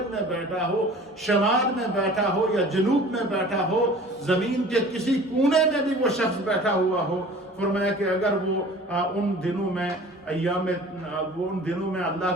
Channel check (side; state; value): both; normal; correlation 0.45